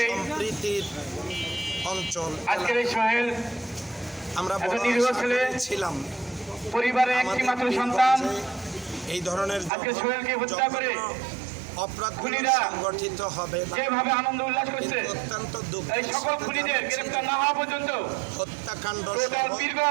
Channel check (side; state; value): left; drops out; at 9.7 s